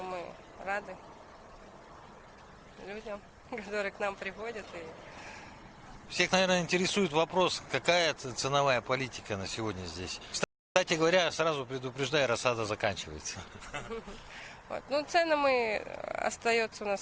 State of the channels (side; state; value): both; identical; correlation 1.00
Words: мы рады людям, которые к нам приходят. Всех, наверное, интересует вопрос, какая ценовая политика на сегодня здесь. Кстати говоря, сразу предупреждаю, рассада заканчивается. Цены остаются у